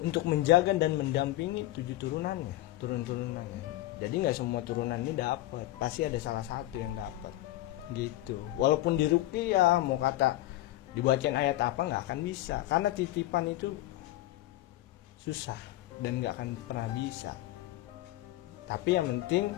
untuk menjaga dan mendampingi 7 turunannya. Jadi nggak semua turunan ini dapat, pasti ada salah satu yang dapat gitu. Walaupun di ruqyah mau kata dibacain ayat apa nggak akan bisa, karena titipan itu susah dan nggak akan pernah bisa. Tapi yang penting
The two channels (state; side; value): quieter; right; 16.0 dB